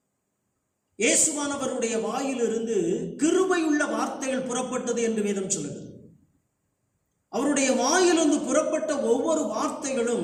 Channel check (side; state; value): both; identical; correlation 1.00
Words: இயேசுவானவருடைய வாயிலிருந்து கிருபையுள்ள வார்த்தைகள் புறப்பட்டது என்று வேதம் சொல்லுகிறது. அவருடைய வாயிலிருந்து புறப்பட்ட ஒவ்வொரு